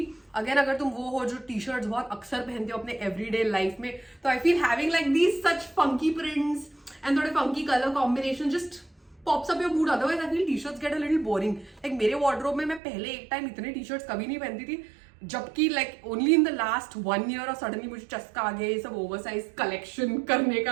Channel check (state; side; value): drops out; left; at 12.8 s